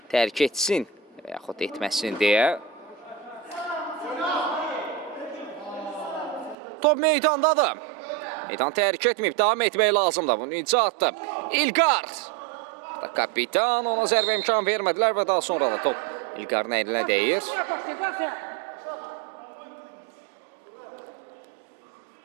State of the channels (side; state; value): left; drops out; at 6.6 s